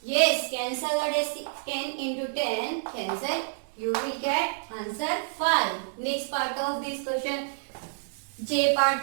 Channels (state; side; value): silent; left; digital silence